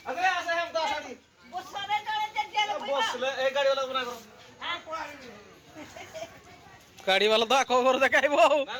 ଆସରେ ଆସେ ହେମ ତ ଆସାଟି ବସିଲେ ଏ ଗାଡି वाला गुना କର ଗାଡି ବାଲା ତ ଆଖ ଘର ଦେଖାଇବ ଆଉ ନା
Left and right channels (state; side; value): identical; both; correlation 1.00